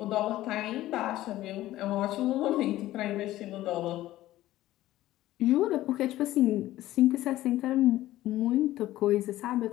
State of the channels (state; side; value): quieter; right; 15.2 dB